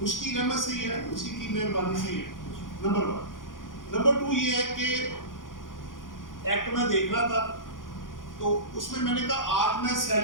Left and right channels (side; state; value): right; late; 0.89 ms